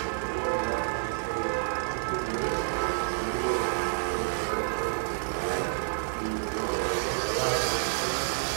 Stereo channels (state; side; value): silent; left; digital silence